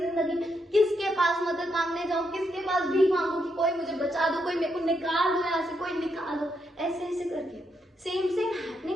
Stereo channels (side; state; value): both; normal; correlation 0.80